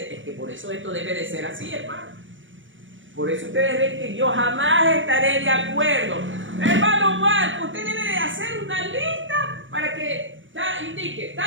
que por eso esto debe de ser así, hermano. Por eso ustedes ven que yo jamás estaré de acuerdo. Hermano Marco, usted debe de hacer una lista para que indique,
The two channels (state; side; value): late; left; 0.56 ms